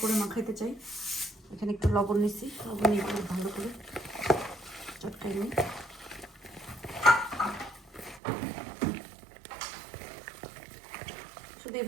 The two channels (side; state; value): left; drops out; at 8.2 s